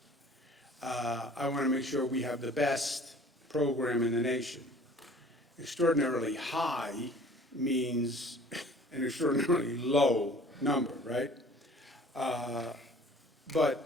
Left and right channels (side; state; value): both; normal; correlation 0.49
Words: I want to make sure we have the best program in the nation. Extraordinarily high means an extraordinarily low number, right? But